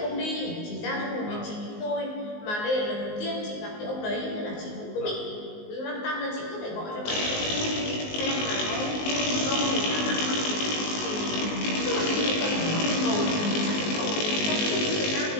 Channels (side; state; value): right; late; 19 ms